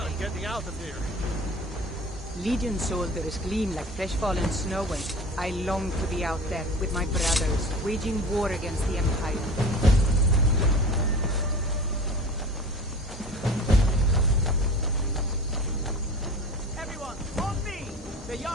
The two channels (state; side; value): normal; both; correlation 0.38